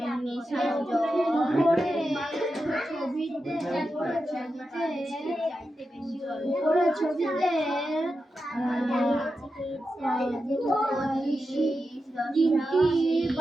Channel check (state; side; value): normal; both; correlation 0.89